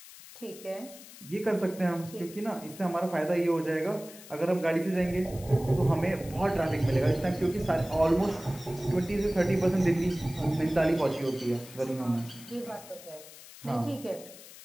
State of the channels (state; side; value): noise; left; hiss, 18 dB below the sound